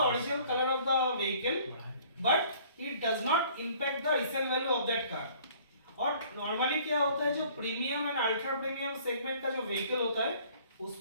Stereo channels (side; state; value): both; inverted; correlation -0.55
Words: original color of the vehicle but it does not impact the resale value of that car। और नॉर्मली क्या होता है, जो premium and ultra premium segment का जो व्हीकल होता है